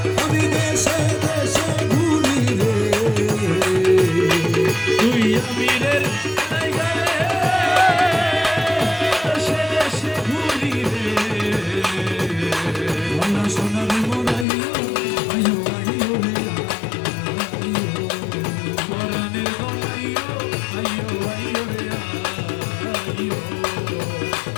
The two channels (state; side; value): drops out; right; at 14.5 s